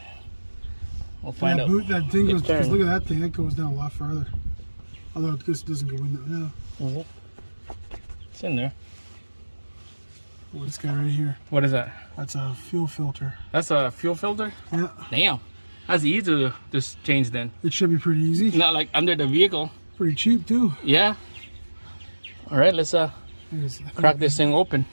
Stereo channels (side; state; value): both; inverted; correlation -1.00